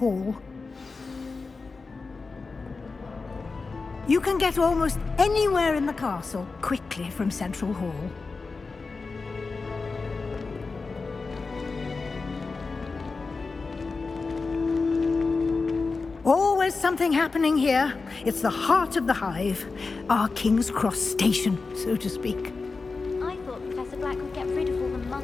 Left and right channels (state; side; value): quieter; right; 4.2 dB